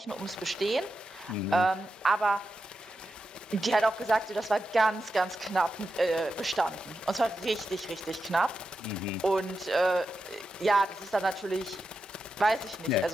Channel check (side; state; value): both; normal; correlation 0.89